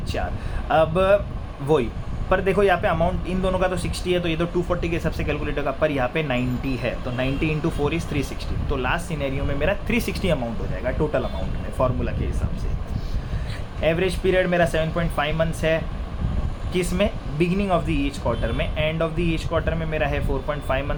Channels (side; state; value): both; identical; correlation 1.00